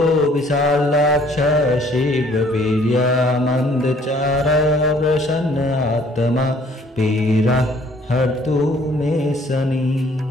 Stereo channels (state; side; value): normal; both; correlation 0.59